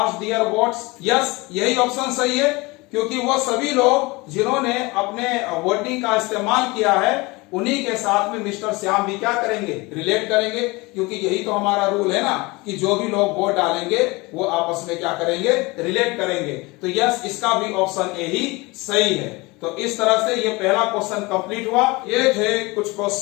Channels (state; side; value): quieter; right; 24.1 dB